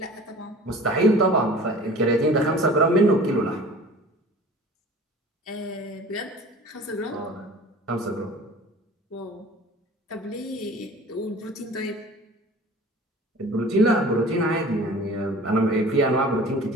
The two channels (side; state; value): both; normal; correlation 0.43